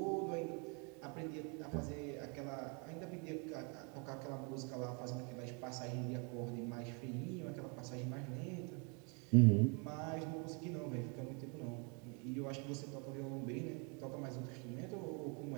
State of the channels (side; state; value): left; quieter; 34.5 dB